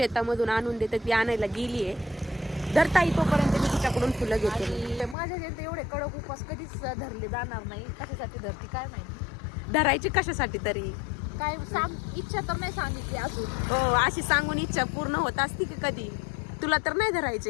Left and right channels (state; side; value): drops out; right; at 5.2 s